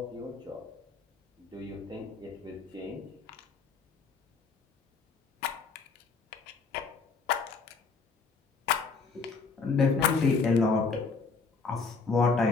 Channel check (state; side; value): quieter; right; 4.7 dB